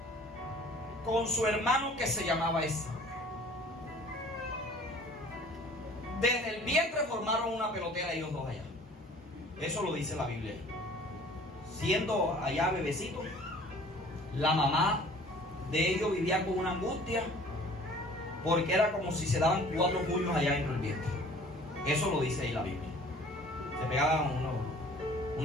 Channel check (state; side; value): normal; both; correlation 0.50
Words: con su hermano que se llamaba Esaú. Desde el vientre formaron una pelotera ellos dos allá. Eso lo dice la Biblia. Siendo allá bebecito, la mamá de ellos vivía con una angustia, porque era como si se daban 4 puños allá dentro del vientre. Eso lo dice ahí la Biblia. Se pegaban